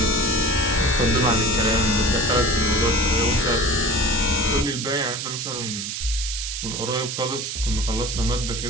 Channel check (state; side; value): noise; right; hiss, 5 dB below the sound